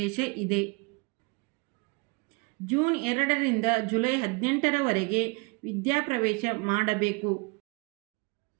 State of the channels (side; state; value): left; quieter; 28.1 dB